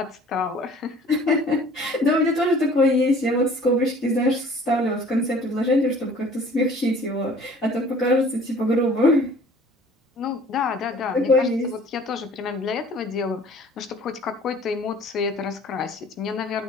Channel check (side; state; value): both; normal; correlation 0.50